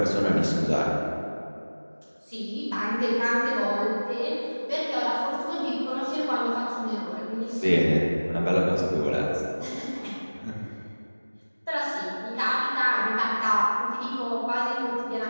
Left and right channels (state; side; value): inverted; both; correlation -1.00